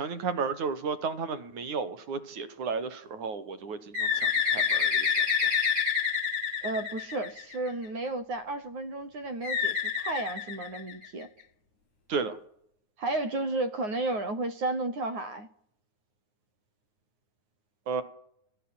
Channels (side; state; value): left; late; 9.5 ms